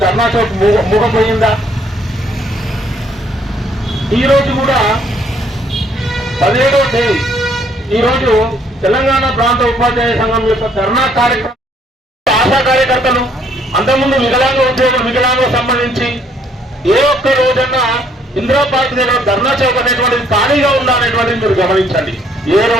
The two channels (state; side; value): normal; both; correlation 0.66